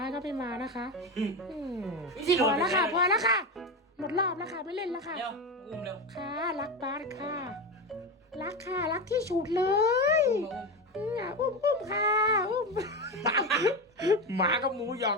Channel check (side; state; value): both; normal; correlation 0.18